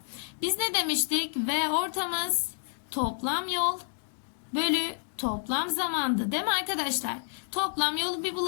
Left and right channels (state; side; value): silent; right; digital silence